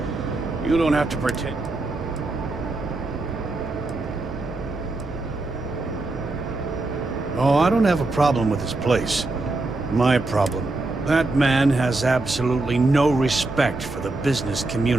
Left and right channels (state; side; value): quieter; left; 3.1 dB